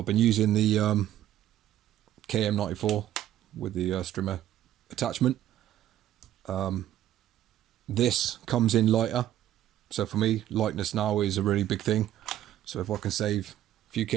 been using the KM94 with the strimmer attachment. This comes in lighter, so for me lightness now is a really big thing. So if I can save a few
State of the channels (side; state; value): left; quieter; 12.4 dB